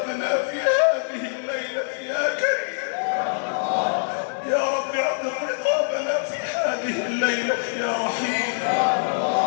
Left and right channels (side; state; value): right; silent; 63 dB below the other